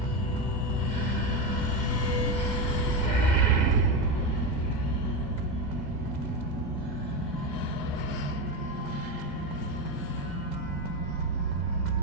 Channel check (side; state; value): right; late; 2.1 ms